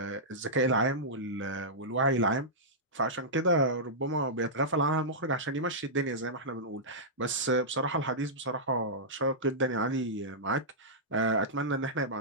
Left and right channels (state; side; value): normal; both; correlation -0.13